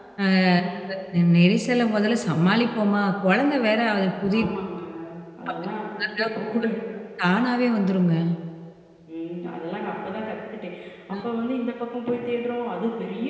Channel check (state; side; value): identical; both; correlation 1.00